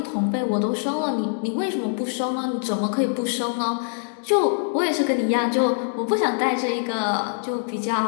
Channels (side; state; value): right; silent; 63 dB below the other